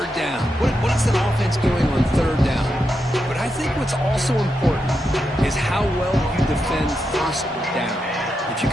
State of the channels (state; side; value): normal; both; correlation 0.85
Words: down. What is an offense doing on third down? But I think what's also important is how well you defend first down. If you